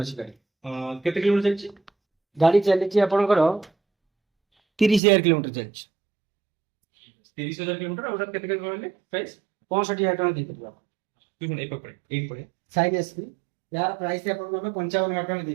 अछि गाड़ी केते किलोमीटर जाइछि गाड़ी चलिछि आपनकर 30000 किलोमीटर चलिछि 30000 किलोमीटर और केते के कहले प्राइस 65000 टଙ୍କା देई ପାରିବା तू ए पकड़े एक पड़े साइन एसपी यार प्राइस आपनको ଆମେ 55000 ଟଙ୍କା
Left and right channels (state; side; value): drops out; left; at 5.0 s